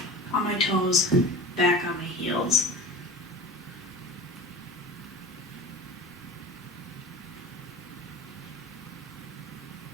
on my toes, back on my heels.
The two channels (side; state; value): both; normal; correlation 0.35